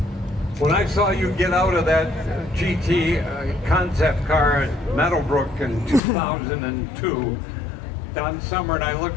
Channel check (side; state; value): right; drops out; at 6.0 s